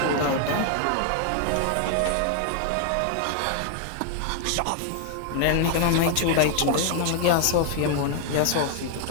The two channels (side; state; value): both; different; correlation 0.00